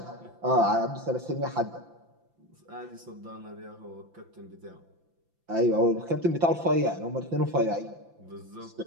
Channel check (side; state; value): left; late; 5.9 ms